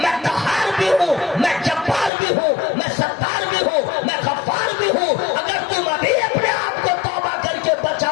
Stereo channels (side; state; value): right; drops out; at 2.1 s